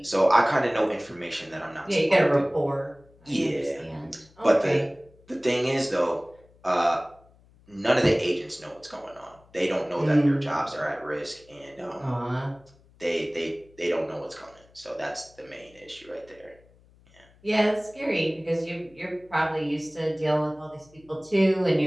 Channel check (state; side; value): noise; left; hum, 29 dB below the sound